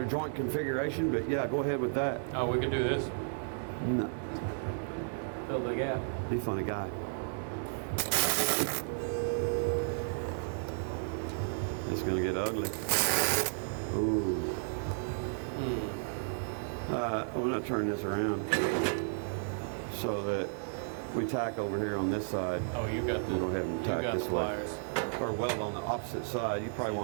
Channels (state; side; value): silent; left; 56 dB below the other